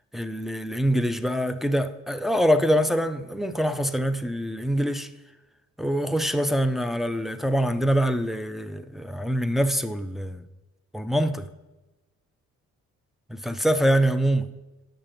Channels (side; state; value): both; normal; correlation 0.88